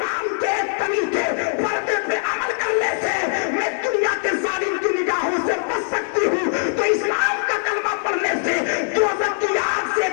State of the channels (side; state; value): right; silent; digital silence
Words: के तरीके पर्दे पे अमल करने से मैं दुनिया के जालिम की निगाहों से बच सकती हूँ, तो इस्लाम का कलमा पढ़ने से दोज़ख की आग से